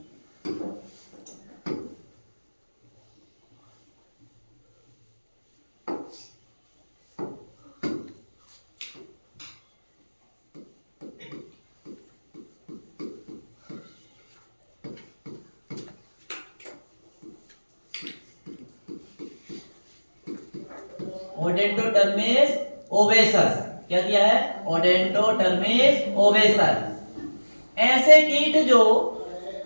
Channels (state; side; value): inverted; both; correlation -1.00